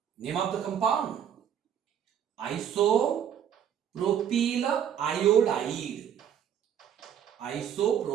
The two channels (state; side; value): quieter; left; 9.1 dB